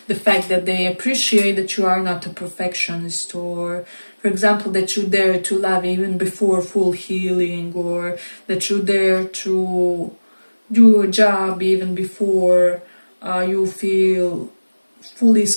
fact that they appreciate that you are not a perfectionist, or for example that you dare to love even before full healing, or that you dare to do a job even before you feel fully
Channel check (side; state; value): both; inverted; correlation -1.00